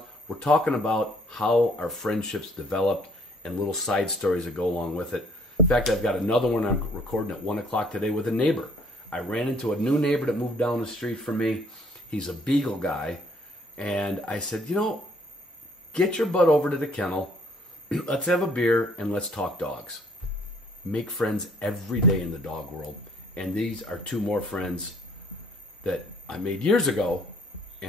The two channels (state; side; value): normal; both; correlation 0.61